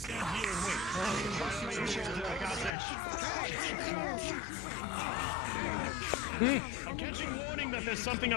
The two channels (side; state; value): right; drops out; at 2.7 s